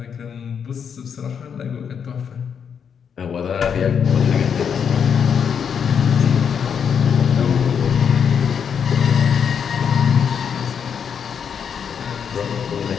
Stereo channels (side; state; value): right; quieter; 7.3 dB